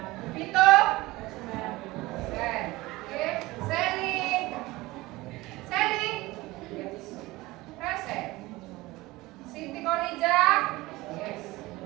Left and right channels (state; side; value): quieter; left; 20.1 dB